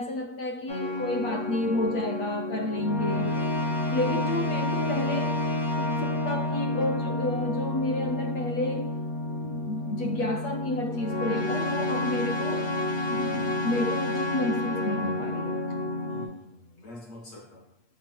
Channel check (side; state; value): right; late; 8.4 ms